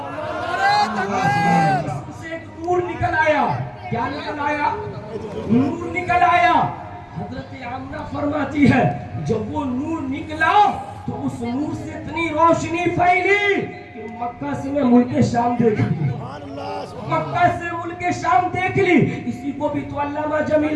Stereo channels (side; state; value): both; identical; correlation 1.00